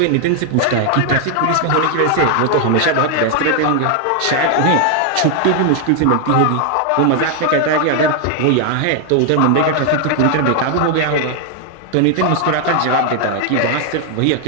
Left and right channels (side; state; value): both; different; correlation 0.00